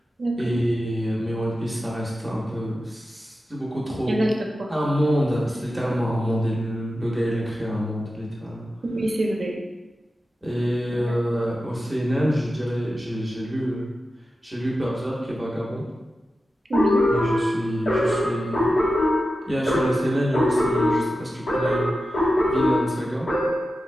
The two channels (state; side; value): normal; both; correlation 0.92